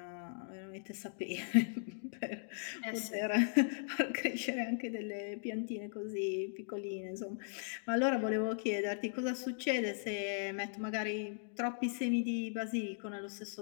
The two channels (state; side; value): silent; right; digital silence